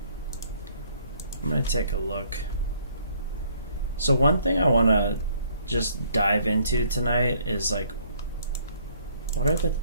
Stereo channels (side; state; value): both; inverted; correlation -0.63